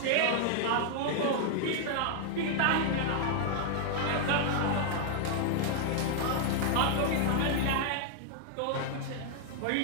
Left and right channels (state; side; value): different; both; correlation -0.01